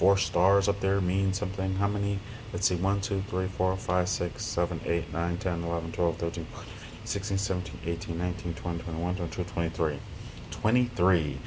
stars up there mean something. How many Let's see, 1, 2, 3, 4, 5, 6, 7, 8, 9, 10, 11, 12, 13, 16, 17, 18, 19, 20, 21, 22, 23. 23.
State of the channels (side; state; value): both; identical; correlation 1.00